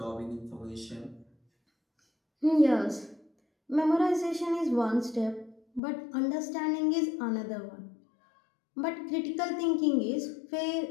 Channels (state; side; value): drops out; right; at 5.8 s